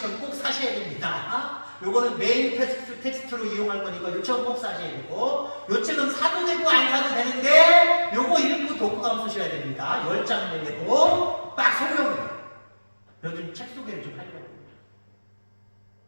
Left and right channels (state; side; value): inverted; both; correlation -1.00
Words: 꼭 사셔야 됩니다. 요거는 메인 텍스트로 이용할 거니까 요 책은 꼭 사셔야 되고 요 책은 사도 되고 안 사도 되는데 요거 읽고 독후감 쓰셔야 됩니다. 10장 내고 딱 설명해요. 요즘 책 소개를 좀 하려고.